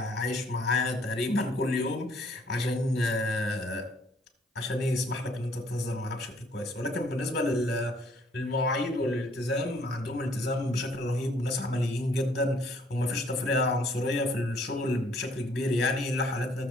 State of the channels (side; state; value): both; normal; correlation 0.63